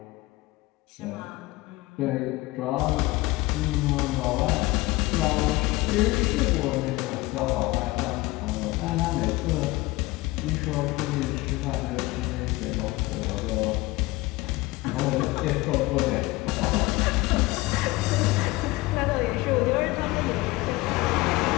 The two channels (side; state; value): right; quieter; 20.2 dB